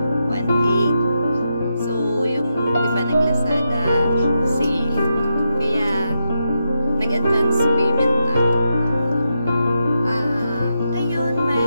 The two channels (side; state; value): both; inverted; correlation -0.85